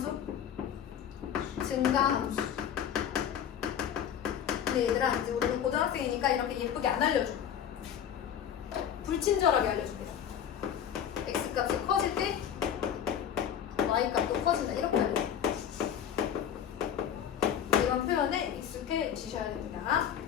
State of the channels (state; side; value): quieter; right; 9.2 dB